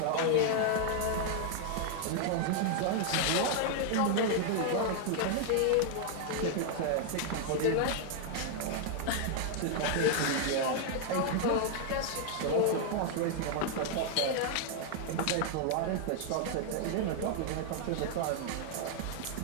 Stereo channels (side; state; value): both; different; correlation 0.00